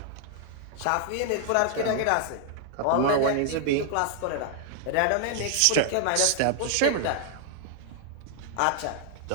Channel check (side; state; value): both; different; correlation 0.00